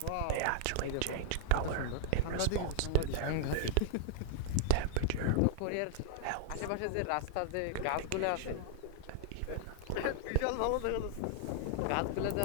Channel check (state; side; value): different; both; correlation -0.01